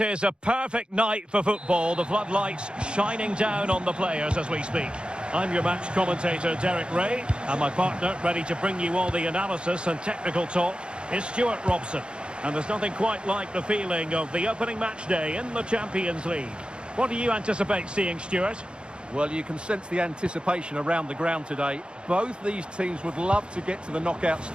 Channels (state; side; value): late; left; 0.054 ms